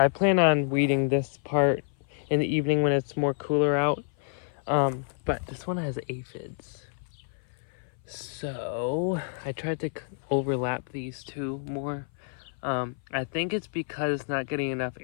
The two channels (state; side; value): silent; right; 56 dB below the other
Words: plan on weeding this part in the evening when it's more cooler out. But this one has aphids. So I tried to overlap these two more. I think it's because it's not getting enough